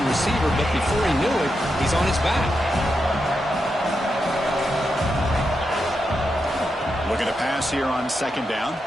receiver, but before he knew it, he's on his back. Looking to pass here on 2nd down.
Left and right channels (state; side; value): normal; both; correlation 0.86